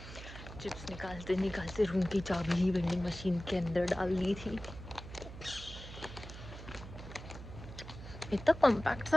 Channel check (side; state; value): right; noise; hum, 12 dB below the sound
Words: चिप्स निकालते निकालते रूम की चाबी ही वेंडिंग मशीन के अंदर डाल दी थी। इतना कॉम्पैक्ट